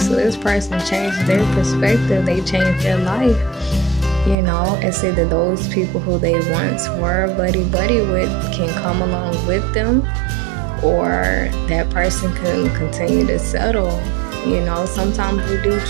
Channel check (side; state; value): left; drops out; at 4.4 s